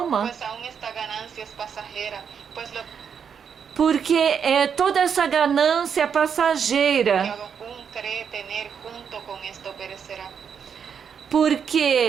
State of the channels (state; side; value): quieter; left; 7.2 dB